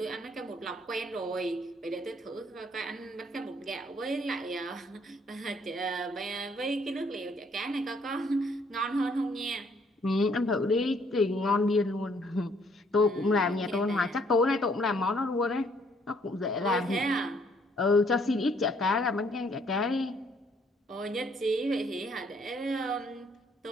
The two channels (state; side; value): normal; both; correlation 0.65